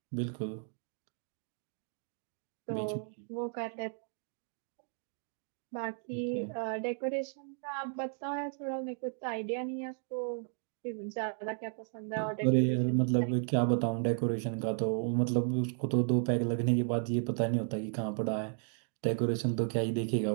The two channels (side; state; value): left; silent; 55 dB below the other